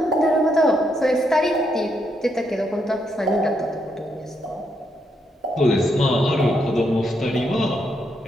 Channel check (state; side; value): normal; both; correlation 0.78